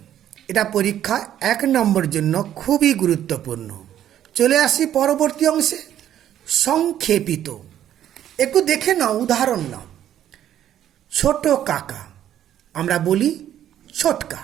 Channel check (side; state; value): left; quieter; 11.1 dB